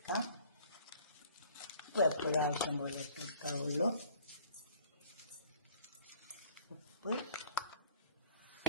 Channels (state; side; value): inverted; both; correlation -0.55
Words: എപ്പോഴും ആവശ്യം പോലെ ഇട്ടെടുക്കാവുള്ളൂ. ഉപ്പ്,